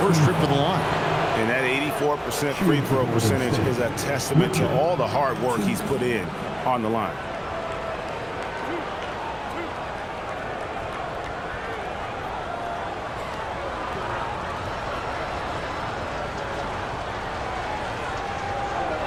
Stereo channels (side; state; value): both; identical; correlation 1.00